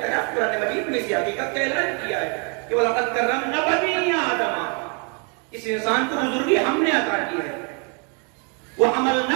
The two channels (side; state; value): left; quieter; 36.5 dB